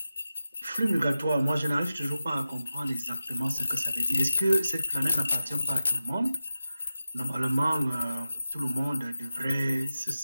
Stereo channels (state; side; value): inverted; both; correlation -0.93